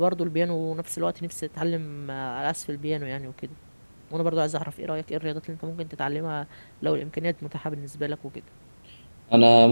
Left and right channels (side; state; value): both; inverted; correlation -1.00